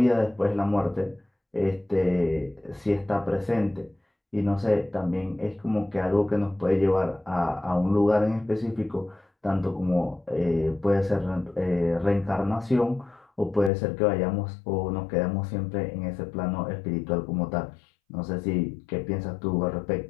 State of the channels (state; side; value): drops out; right; at 13.7 s